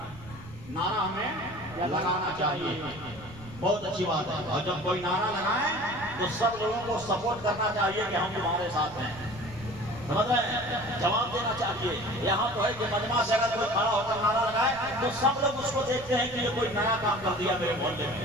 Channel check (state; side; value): noise; right; rumble, 17 dB below the sound